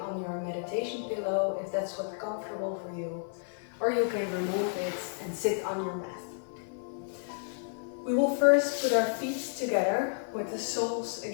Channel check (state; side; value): silent; right; 57 dB below the other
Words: your meditation pillow if that's what's comfortable for you, or you can remove it and sit on your mat. We will first put our feet together with the soles